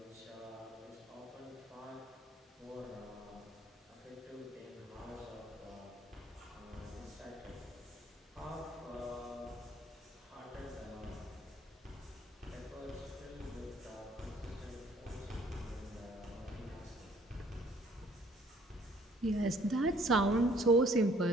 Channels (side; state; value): both; normal; correlation 0.60